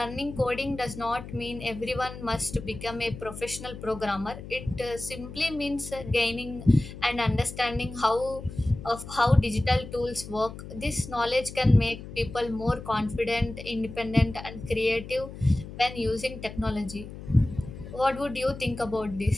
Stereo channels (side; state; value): left; noise; hum, 12 dB below the sound